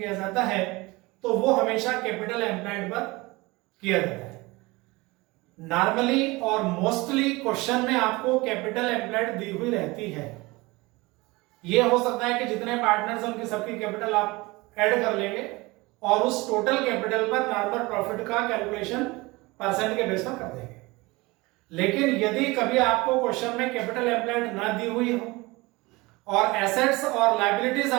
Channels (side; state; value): left; quieter; 22.8 dB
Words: जाता है तो वो हमेशा कैपिटल एम्प्लॉयड पर किया जाता है। नॉर्मली और मोस्टली क्वेश्चन में आपको कैपिटल एम्प्लॉयड दी हुई रहती है। ये हो सकता है कि जितने पार्टनर्स हैं उनकी सबकी कैपिटल आप ऐड कर लेंगे और उस टोटल कैपिटल पर नॉर्मल प्रॉफिट का कैलकुलेशन परसेंट के बेस पर कर देंगे। लेकिन यदि कभी आपको क्वेश्चन में कैपिटल एम्प्लॉयड ना दी हुई हो और एसेट्स और लायबिलिटीज